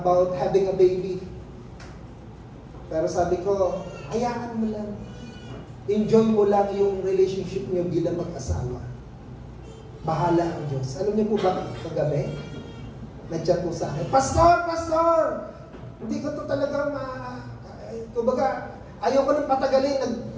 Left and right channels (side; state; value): both; identical; correlation 1.00